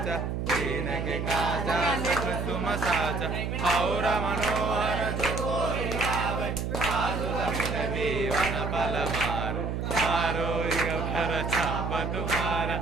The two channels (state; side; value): noise; right; hum, 2 dB below the sound